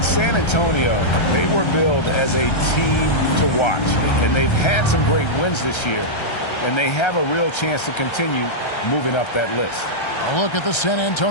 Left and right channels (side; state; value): right; late; 1.3 ms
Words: San Antonio, they were billed as a team to watch, and they've had some great wins this year, and they have a real chance to continue moving up that list. A look at the San